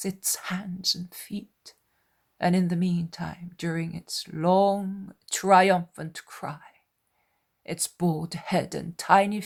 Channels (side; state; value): both; identical; correlation 1.00